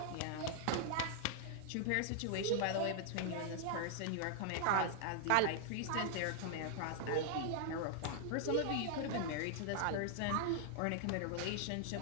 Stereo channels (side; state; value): both; different; correlation 0.00